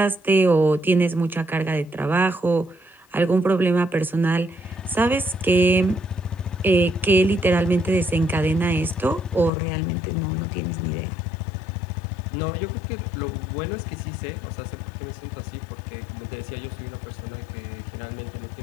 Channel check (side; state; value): right; drops out; at 9.5 s